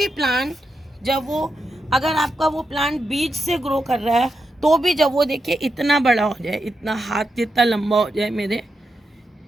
प्लांट जब वो, अगर आपका वो प्लांट बीज से ग्रो कर रहा है, तो भी जब वो देखिए इतना बड़ा हो जाए, इतना हाथ जितना लंबा हो जाए मेरे,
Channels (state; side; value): normal; both; correlation 0.86